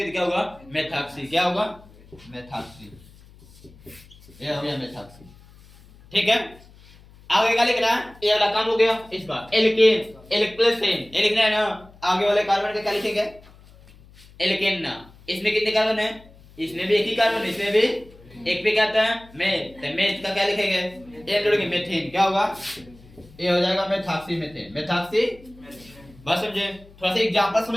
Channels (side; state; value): left; noise; hum, 24 dB below the sound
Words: तो क्या होगा, मेथॉक्सी, क्या होगा, मेथॉक्सी, ये हो गया मेथॉक्सी, ठीक है। आगे क्या लिखना है, ये वाला काम हो गया इसका, एल्केन, एल्केन, ये लिखना है ना। आगे वाले कार्बन का क्या लिखेंगे, एल्केन ना, इसमें कितने कार्बन है, इसमें भी एक ही कार्बन, इसमें भी एक पे क्या आता है, मेथ, तो मेथ का क्या लिखेंगे, एन जोड़ेंगे, मेथेन, क्या होगा, ये हो जाएगा मेथॉक्सी मेथेन, मेथॉक्सी। बस समझे, थोड़ा सा एग्जांपल